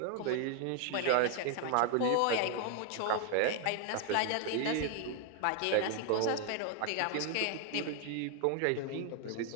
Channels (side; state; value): both; different; correlation 0.00